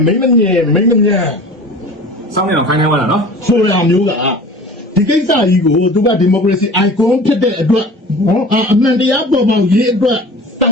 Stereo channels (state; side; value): normal; both; correlation 0.40